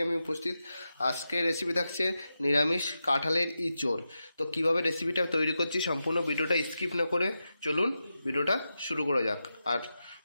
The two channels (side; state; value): both; inverted; correlation -0.90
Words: আমি উপস্থিত। আজকের রেসিপি থাকছে নিরামিষ কাঁঠালের ইঁচড়। তো কিভাবে রেসিপিটা তৈরি করছি সম্পূর্ণ ভিডিওটা স্কিপ না করে চলুন ভিডিওটা শুরু করা যাক। আর